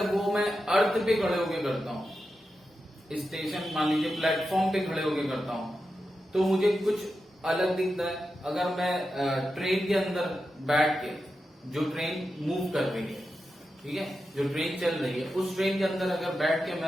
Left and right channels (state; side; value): normal; both; correlation 0.90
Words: वो मैं अर्थ पे खड़े होके करता हूँ, स्टेशन मान लीजिए प्लेटफॉर्म पे खड़े होके करता हूँ, तो मुझे कुछ अलग दिखता है। अगर मैं ट्रेन के अंदर बैठ के, जो ट्रेन मूव कर रही है, ठीक है, जो ट्रेन चल रही है, उस ट्रेन के अंदर अगर बैठ के